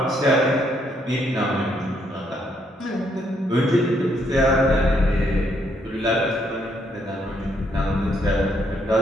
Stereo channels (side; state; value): both; normal; correlation 0.72